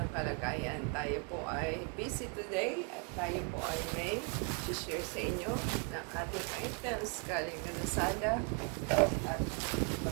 kalagayan. Tayo po ay busy today at tayo po ay may share sa inyo ng ating items galing na Lazada. At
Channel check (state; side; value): quieter; left; 34.5 dB